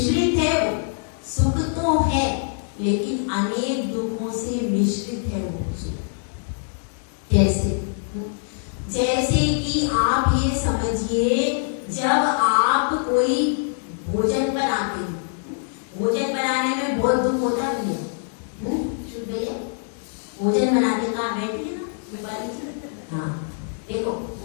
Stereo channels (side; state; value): right; silent; digital silence